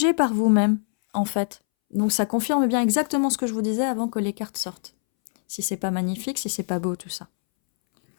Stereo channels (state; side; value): silent; right; 63 dB below the other